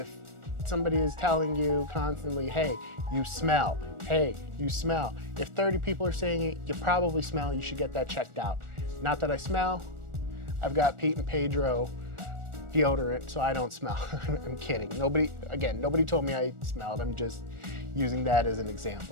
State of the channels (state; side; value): late; left; 1.4 ms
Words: somebody is telling you constantly, hey, you smell, hey, you smell. If 30 people are saying it, you probably smell, you should get that checked out. Not that I smell. I've got Pete and Pedro deodorant, so I don't smell. I'm kidding. Nobody told me I smelled. I'm just using that as an